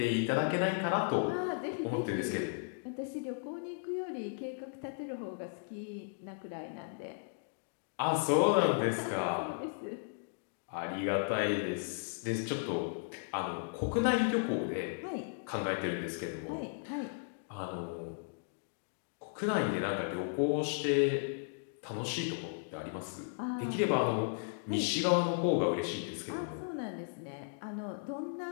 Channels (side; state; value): right; silent; digital silence